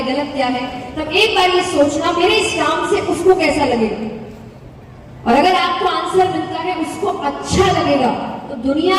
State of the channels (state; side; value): identical; both; correlation 1.00